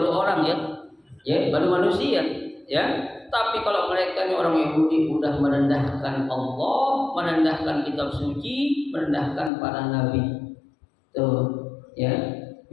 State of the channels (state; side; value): drops out; right; at 9.5 s